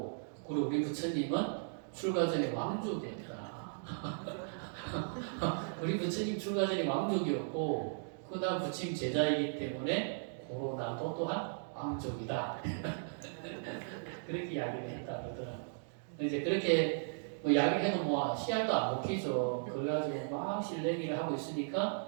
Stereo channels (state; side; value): silent; left; digital silence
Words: 그리고 우리 부처님은 출가 전에 왕족이었다. 우리 부처님 출가 전에 왕족이었고 나 부처님 제자이기 때문에 고로 나도 또한 왕족이다. 그렇게 이야기를 했다 그러더라고요. 이제 그렇게 이야기를 해도 씨알도 안 먹히죠. 그래가지고 막 실내기를 하고